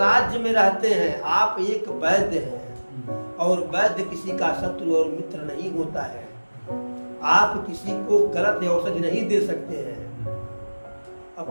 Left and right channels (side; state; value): both; inverted; correlation -1.00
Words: में रहते हैं, आप एक वैद्य हैं, और वैद्य किसी का शत्रु और मित्र नहीं होता है। आप किसी को गलत औषधि नहीं दे सकते हैं। अब